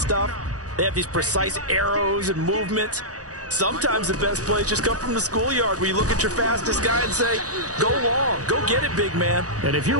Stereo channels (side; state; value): left; late; 0.67 ms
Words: they have these precise arrows and movements. Sometimes the best plays just come from the schoolyard where you look at your fastest guy and say, go long, go get it, big man. And if you're